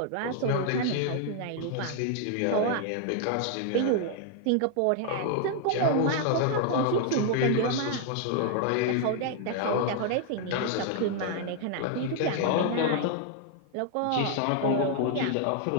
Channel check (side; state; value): both; different; correlation 0.00